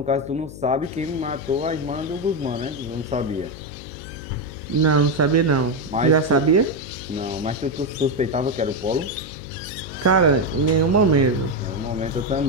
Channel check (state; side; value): noise; left; hum, 14 dB below the sound